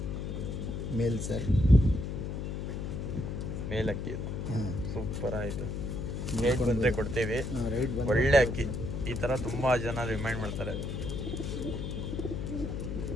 ಮೇಲ್ ಸರ್. ಮೇಲ್ ಅಕ್ಕಿ ಇದು. ಹಾಂ, ಸೂಪರ್ ಆಯಿತು. ರೇಟ್ ಬಂದರೆ ಕೊಡ್ತೀವಿ. ರೇಟ್ ಬಂದರೆ ಒಳ್ಳೆ ಅಕ್ಕಿ. ಈ ಥರ ತುಂಬ ಜನ ರಿಮೈಂಡ್ ಮಾಡ್ತಾರೆ.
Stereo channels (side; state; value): left; noise; hum, 4 dB below the sound